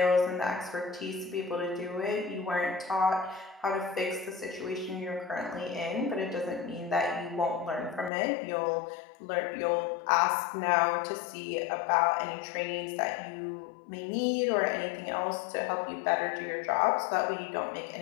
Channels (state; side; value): drops out; right; at 8.1 s